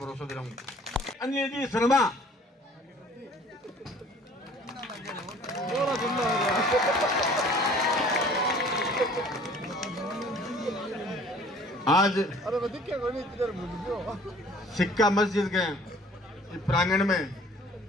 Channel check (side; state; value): both; normal; correlation 0.52